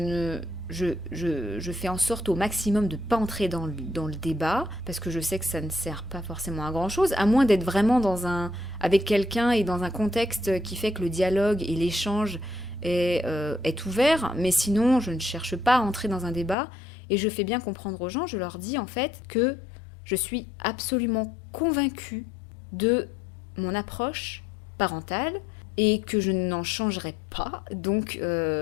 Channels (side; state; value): right; drops out; at 16.6 s